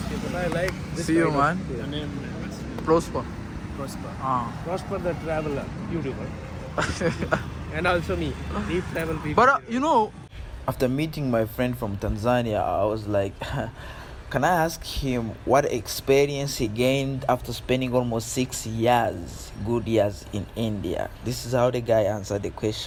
this See you, kind of- man. Your name Prosper. Prosper. Ah. Prosper the traveler, YouTuber. And also me, Deep Travel people. But you know, After meeting my friend from Tanzania, I was like, can I ask him what experience he gained after spending almost 6 years, good years in India? This is how the guy answered the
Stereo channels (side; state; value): both; identical; correlation 1.00